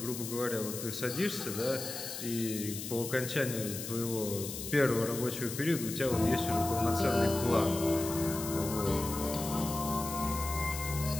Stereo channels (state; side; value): noise; left; hiss, 7 dB below the sound